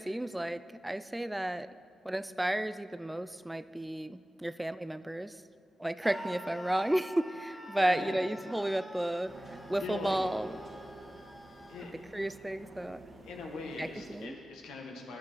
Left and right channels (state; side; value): normal; both; correlation 0.97